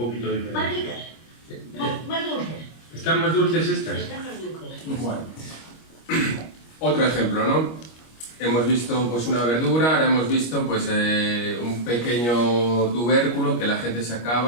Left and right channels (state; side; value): late; right; 25 ms